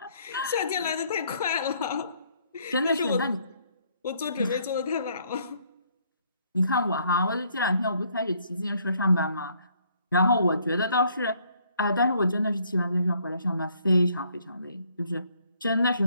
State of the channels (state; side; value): inverted; both; correlation -0.66